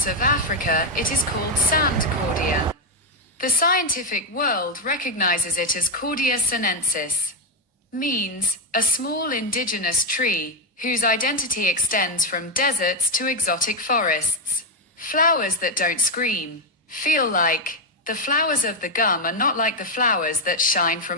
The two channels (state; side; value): normal; both; correlation 0.04